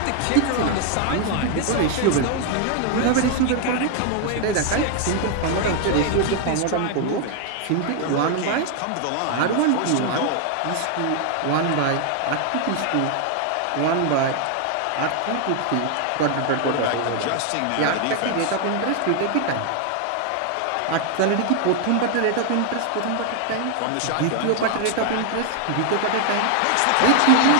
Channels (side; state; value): both; different; correlation 0.00